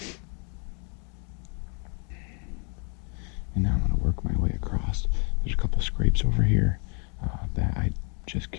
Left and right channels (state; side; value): quieter; right; 37.0 dB